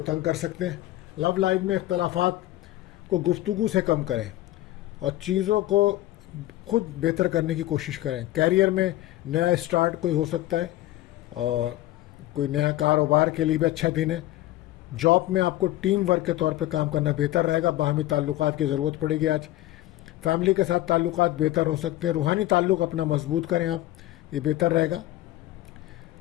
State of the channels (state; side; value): quieter; right; 15.7 dB